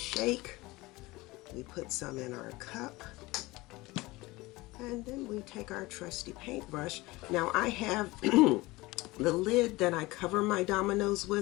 We put some in our cup. And then we take our trusty paintbrush. Now I have the lid that I cover my dominoes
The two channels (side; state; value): right; quieter; 21.1 dB